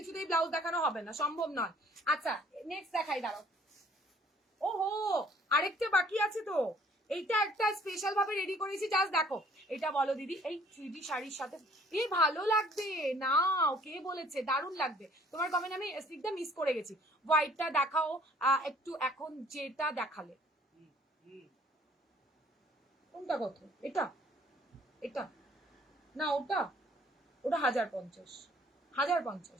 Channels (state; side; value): normal; both; correlation 0.58